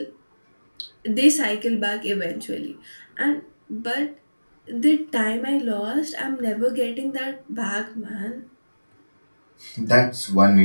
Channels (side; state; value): both; inverted; correlation -1.00